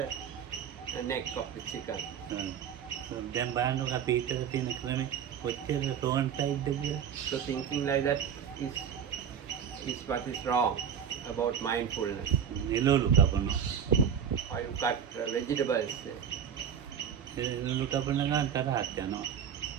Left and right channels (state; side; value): quieter; left; 8.1 dB